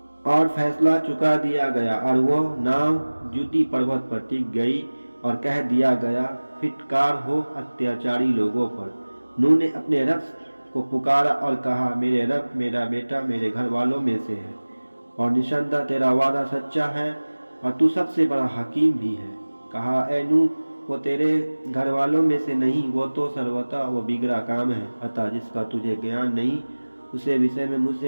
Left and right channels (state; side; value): inverted; both; correlation -1.00